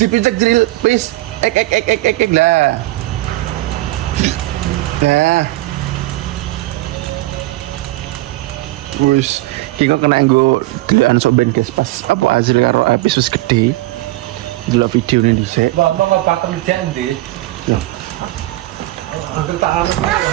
Dipincut Azril, please. Ek lah. Nah. Kiko kena nggo delokan sok ben guys pas apa Azril karo Hafiz wis gede. Delok video ini dhisik. Mbak bapak kerjaan deh. Ya. Hampir tak harus.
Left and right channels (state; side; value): quieter; left; 18.2 dB